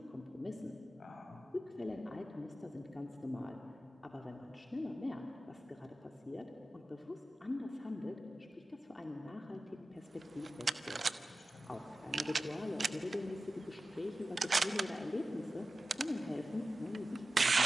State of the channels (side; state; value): both; normal; correlation 0.94